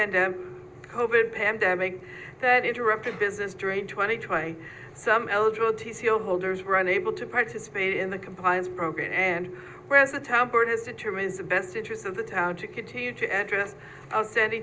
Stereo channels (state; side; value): identical; both; correlation 1.00